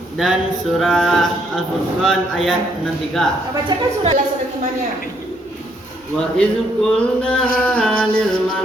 dan surah Al-Furqan ayat 63. Kita bacakan surah imannya. Wa idz qulna lil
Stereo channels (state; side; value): normal; both; correlation 0.70